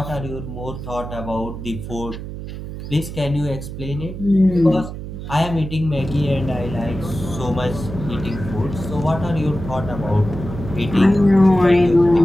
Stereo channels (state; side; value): noise; right; hum, 9 dB below the sound